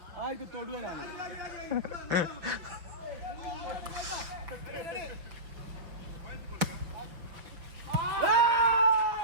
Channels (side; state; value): left; late; 5.9 ms